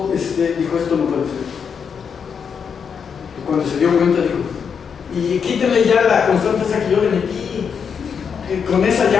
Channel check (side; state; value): right; quieter; 6.7 dB